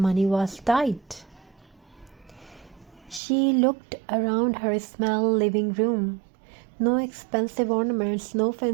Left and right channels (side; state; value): left; drops out; at 3.2 s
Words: was tight. She looked around her small living room. No expensive ornaments, no